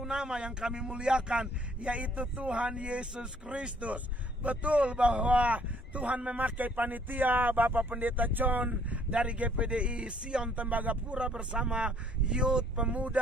nama yang kami muliakan, yaitu Tuhan Yesus Kristus. Betul bahwa Tuhan memakai panitia Bapak Pendeta John dari GPDI Sion Tembagapura bersama youth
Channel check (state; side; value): normal; both; correlation 0.62